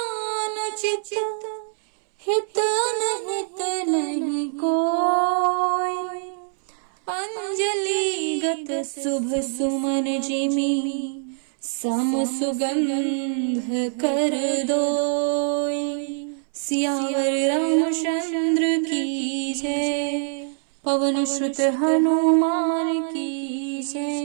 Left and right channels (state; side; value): silent; left; 63 dB below the other